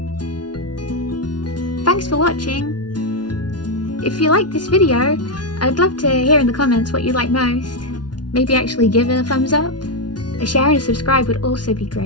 Thanks for watching! If you liked this video, I'd love to hear in the comments what you like most. Maybe actually give it a thumbs up. A share and a subscribe would also be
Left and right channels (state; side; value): late; right; 0.69 ms